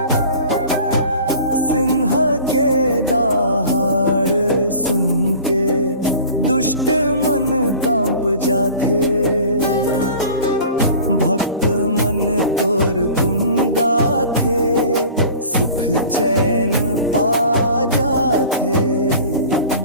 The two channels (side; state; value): both; inverted; correlation -0.42